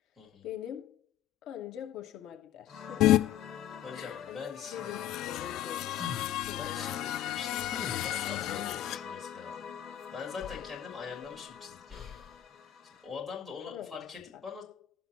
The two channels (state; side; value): quieter; right; 11.5 dB